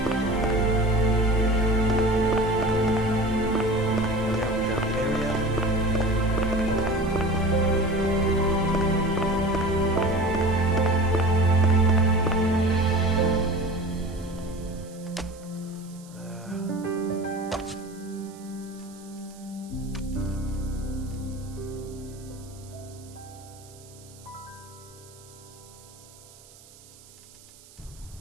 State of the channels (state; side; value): noise; right; hiss, 23 dB below the sound